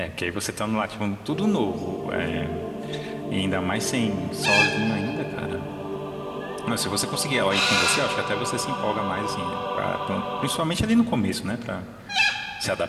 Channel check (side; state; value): both; identical; correlation 1.00